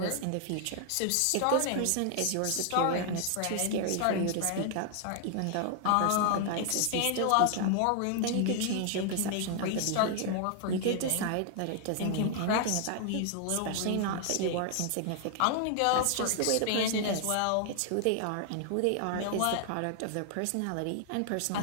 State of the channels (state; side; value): different; both; correlation 0.00